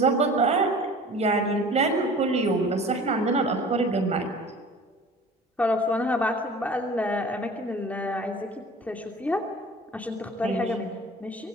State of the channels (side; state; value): both; normal; correlation 0.43